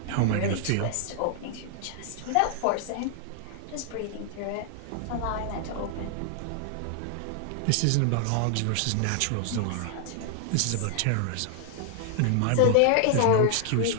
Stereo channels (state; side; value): different; both; correlation 0.00